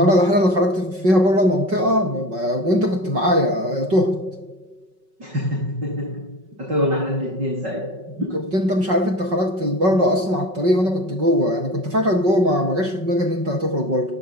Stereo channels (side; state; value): left; late; 5.4 ms